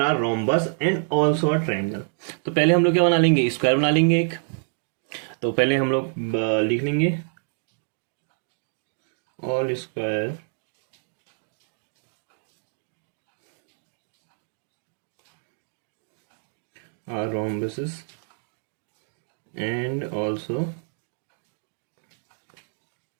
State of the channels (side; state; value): left; silent; 60 dB below the other